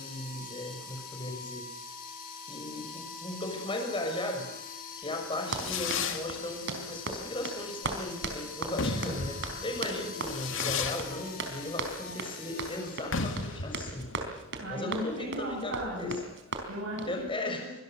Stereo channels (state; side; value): normal; both; correlation 0.22